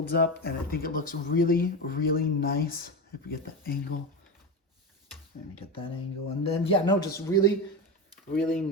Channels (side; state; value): both; normal; correlation 0.19